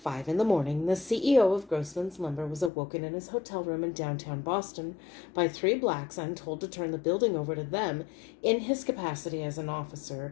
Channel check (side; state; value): right; drops out; at 2.7 s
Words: a.m, the CEO of Grossman's Lumber was awoken in his hotel room in downtown Boston by 3 blacks and told to turn the building over to them in his capacity as an